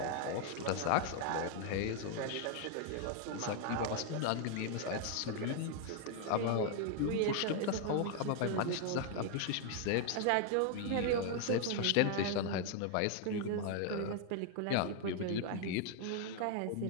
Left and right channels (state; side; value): different; both; correlation 0.00